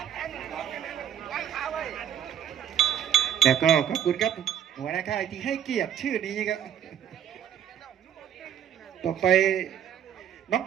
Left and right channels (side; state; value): left; quieter; 9.5 dB